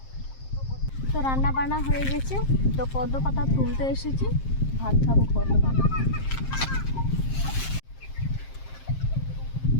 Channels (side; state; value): right; late; 7.5 ms